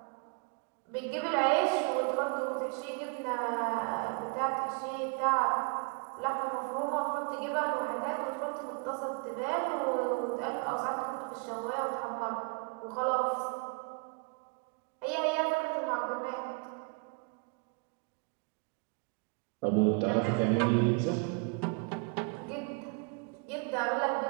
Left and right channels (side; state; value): left; quieter; 33.8 dB